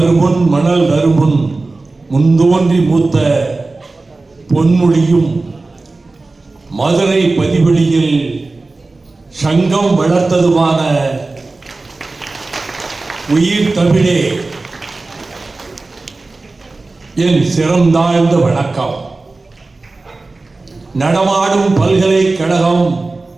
மணல் வருமுன் முன்தோன்றி மூத்த பொன்மொழியும் மதுரை பதிவெளியில் சங்கம் வளர்த்ததுமான உயிர் தமிழே என் சிறந்தாழ்ந்த வணக்கம். நடமாடும் பல்கலைக்கழகம்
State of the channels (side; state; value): left; quieter; 3.4 dB